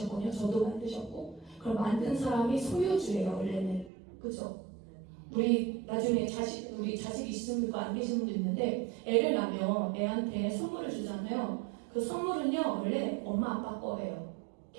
저도 만드셨고. 그럼 만든 사람이 소유주예요, 원래는. 그죠? 우리 나중에 우리 자식 있으신 분도 안 계신 분도 있는데, 애를 낳으면 애한테 선물을 주잖아요. 그 선물은요, 원래 엄마 아빠 거예요.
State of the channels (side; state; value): left; drops out; at 3.9 s